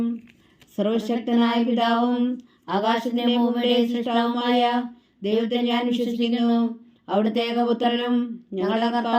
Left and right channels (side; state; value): both; identical; correlation 1.00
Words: സർവശക്തനായ പിതാവും ആകാശത്തിൻ്റെ ഭൂമിയുടെയും സൃഷ്ടാവുമായ ദൈവത്തെ ഞാൻ വിശ്വസിക്കുന്നു. അവിടുത്തെ ഏകപുത്രനും ഞങ്ങളുടെ